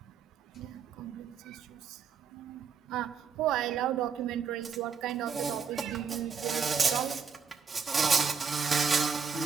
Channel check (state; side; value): quieter; left; 6.1 dB